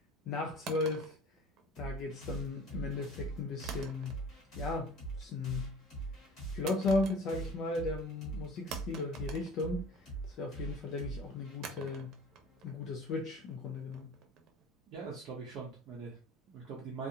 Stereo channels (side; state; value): both; normal; correlation 0.43